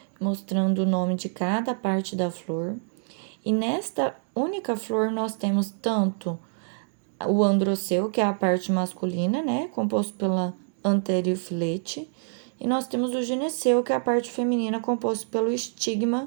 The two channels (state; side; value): silent; left; 61 dB below the other